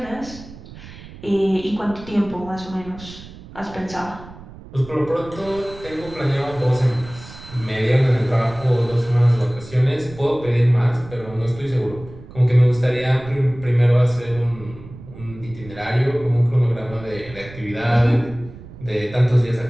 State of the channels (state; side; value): noise; right; rumble, 17 dB below the sound